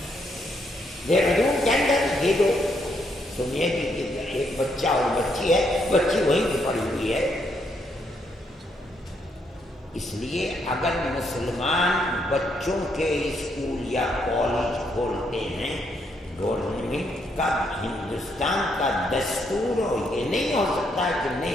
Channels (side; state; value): both; normal; correlation 0.75